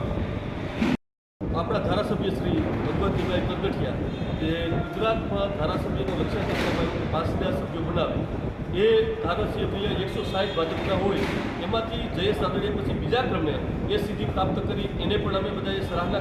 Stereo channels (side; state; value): both; identical; correlation 1.00